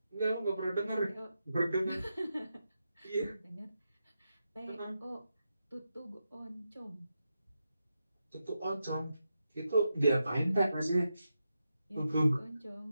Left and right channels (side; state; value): both; inverted; correlation -0.87